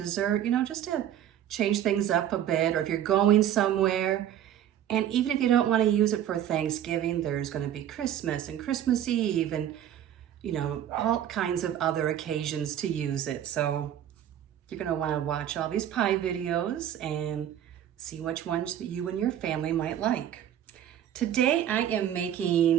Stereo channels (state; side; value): quieter; left; 10.7 dB